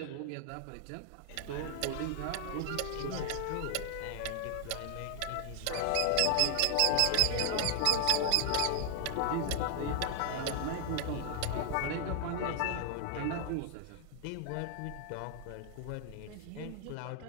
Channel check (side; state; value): both; different; correlation 0.00